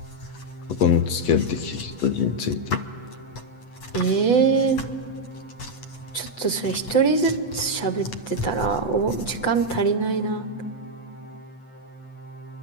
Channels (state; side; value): late; right; 8.1 ms